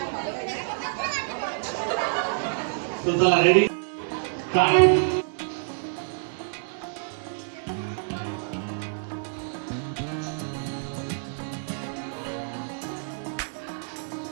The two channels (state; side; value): silent; left; digital silence